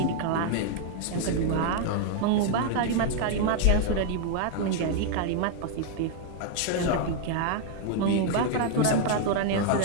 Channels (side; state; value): both; different; correlation 0.00